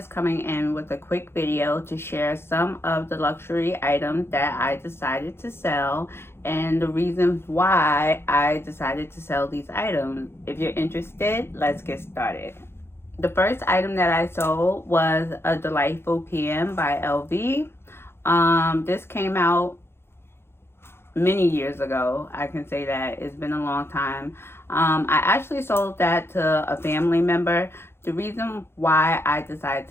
coming in with a quick video to share some of the luxury items that I decided to sell and the reasons why I decided to sell these items. If you're interested, let's get started. The first item that I sold was a Delightful PM by LV. This came out many years ago. I can say that it's been a long time. I actually sold that to a family member. The reason why I decided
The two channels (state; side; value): late; right; 0.12 ms